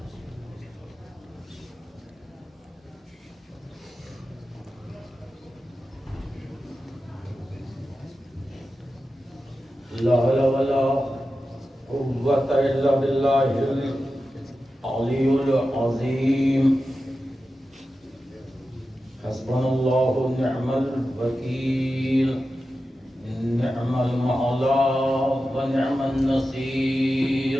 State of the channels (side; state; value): both; normal; correlation 0.92